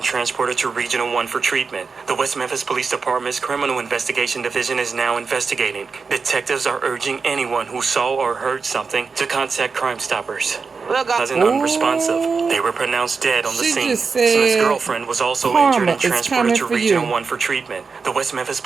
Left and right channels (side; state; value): left; quieter; 5.0 dB